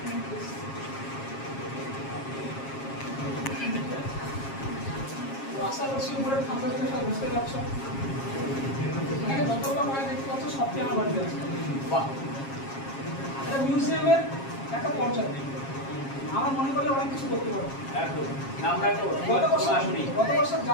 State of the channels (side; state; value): right; late; 7.4 ms